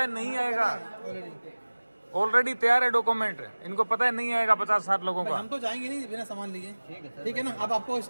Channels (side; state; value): both; inverted; correlation -1.00